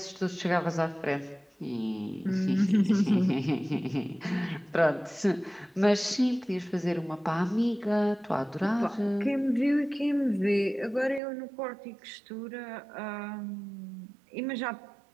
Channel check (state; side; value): drops out; left; at 11.2 s